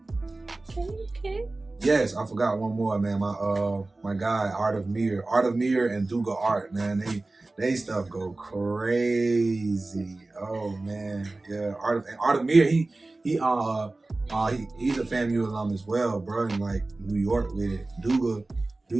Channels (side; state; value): left; quieter; 3.1 dB